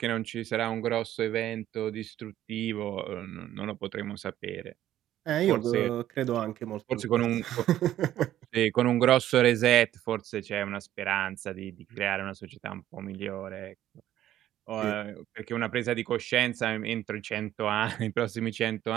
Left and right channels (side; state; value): left; quieter; 12.7 dB